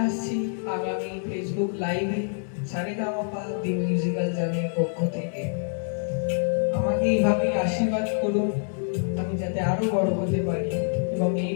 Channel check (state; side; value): silent; right; digital silence